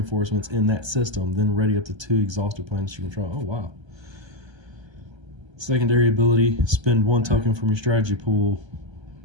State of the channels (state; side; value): late; left; 1.3 ms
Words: in that system, then ready up to 2 exhausted planets you control. Oh, wow. Secondary ability, spend 1 token from your strategy pool